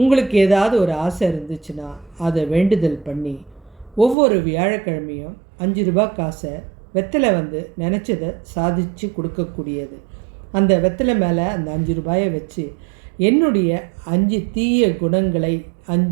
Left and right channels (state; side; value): drops out; left; at 4.2 s